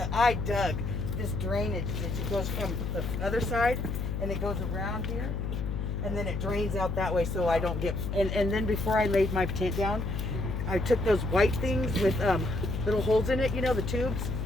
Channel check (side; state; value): left; noise; hum, 2 dB below the sound